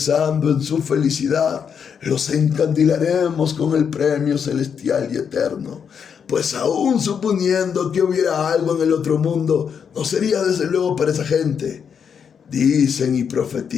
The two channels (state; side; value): quieter; right; 7.1 dB